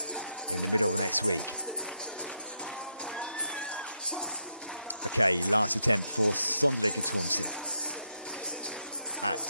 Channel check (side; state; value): both; inverted; correlation -0.80